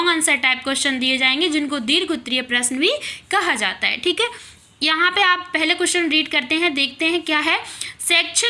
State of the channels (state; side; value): identical; both; correlation 1.00